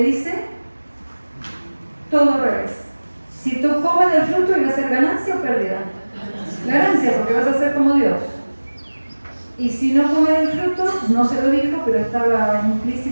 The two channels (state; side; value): inverted; both; correlation -1.00